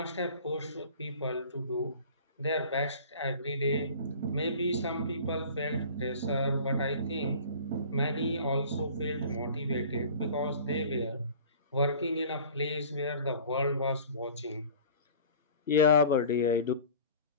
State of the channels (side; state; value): both; inverted; correlation -0.44